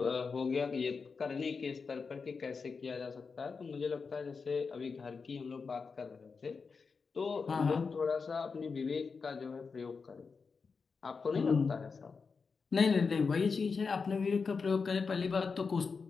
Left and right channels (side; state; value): right; quieter; 5.0 dB